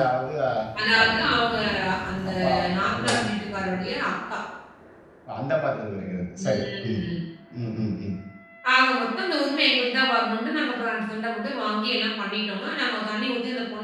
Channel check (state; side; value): identical; both; correlation 1.00